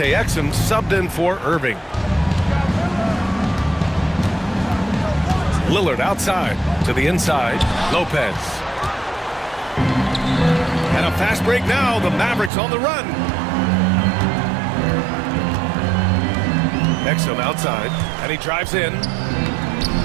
Exum subbed in for Irving. Lillard outside to the inside. Lopez. And a fast break now. The Mavericks on the run. Exum outside. And he drives in.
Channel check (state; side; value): drops out; left; at 12.5 s